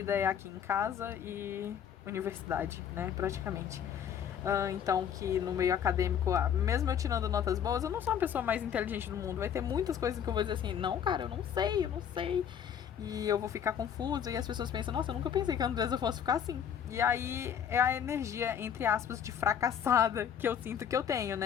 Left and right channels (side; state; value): right; quieter; 8.6 dB